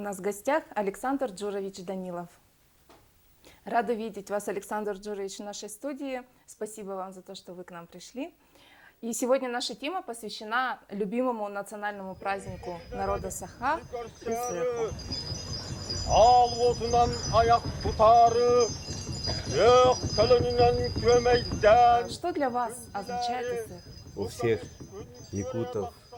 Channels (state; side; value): identical; both; correlation 1.00